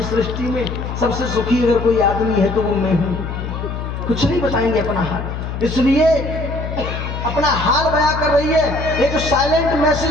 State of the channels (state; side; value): noise; left; hum, 6 dB below the sound